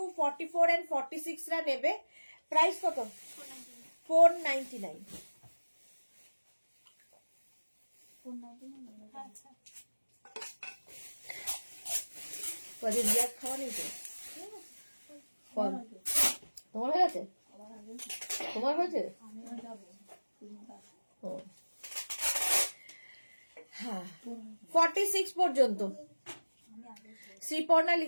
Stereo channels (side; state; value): both; inverted; correlation -1.00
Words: 44 and 46 রা নেবে। প্রাইস কত? 499। কদিন বিয়ার খাওয়া নেই তো? তোমার হয়ে গেছে? তোমার হয়েছে? ও হ্যাঁ, 46 পর্যন্ত। শ্রীপর্ণা